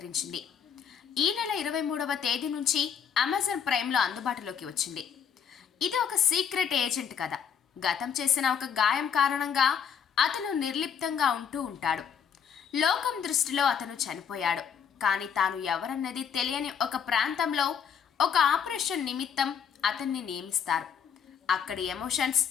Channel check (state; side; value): quieter; right; 7.6 dB